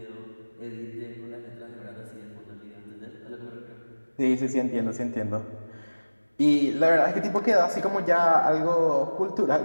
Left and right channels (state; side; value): inverted; both; correlation -1.00